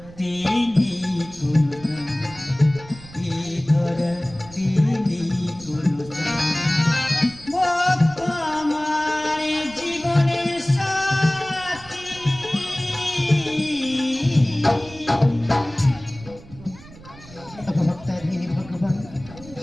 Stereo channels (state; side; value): noise; right; rumble, 19 dB below the sound